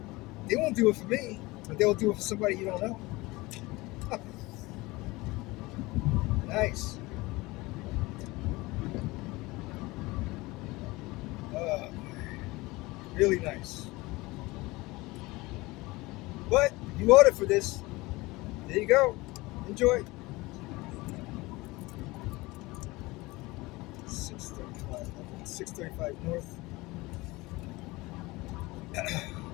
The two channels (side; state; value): right; quieter; 21.7 dB